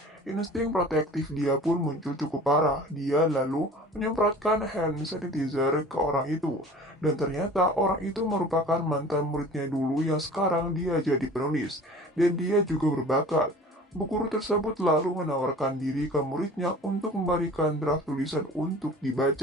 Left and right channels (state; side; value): normal; both; correlation 0.44